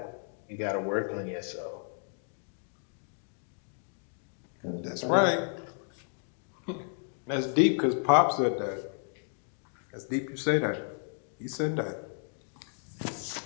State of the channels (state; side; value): silent; right; 56 dB below the other